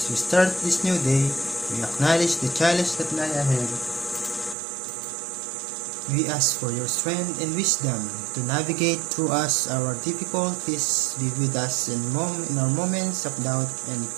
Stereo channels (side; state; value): left; drops out; at 4.5 s